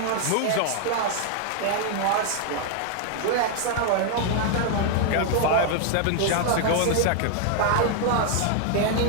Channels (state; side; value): different; both; correlation 0.00